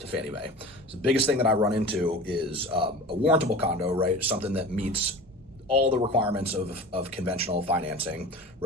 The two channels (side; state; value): both; normal; correlation 0.36